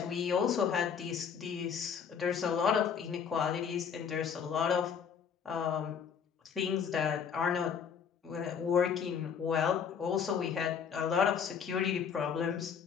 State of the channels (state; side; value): quieter; right; 7.1 dB